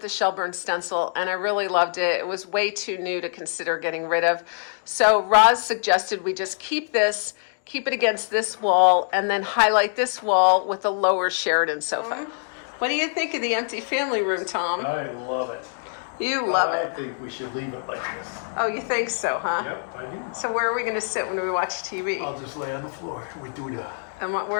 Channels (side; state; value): right; silent; digital silence